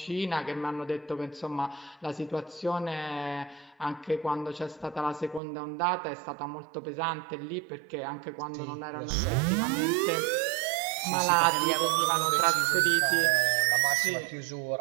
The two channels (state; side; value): drops out; left; at 5.4 s